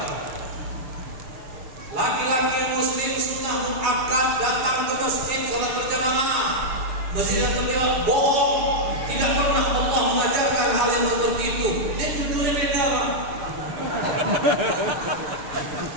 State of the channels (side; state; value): left; late; 6.7 ms